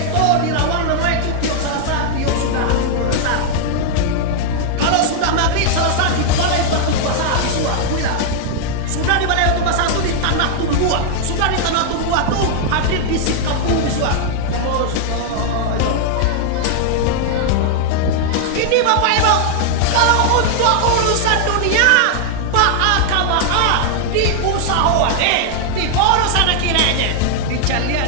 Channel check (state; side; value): different; both; correlation 0.00